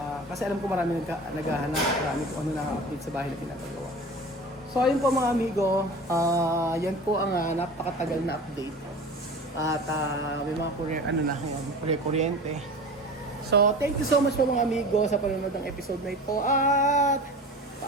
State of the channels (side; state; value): both; normal; correlation 0.36